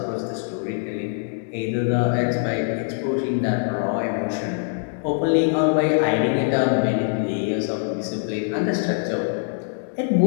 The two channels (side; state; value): right; silent; 63 dB below the other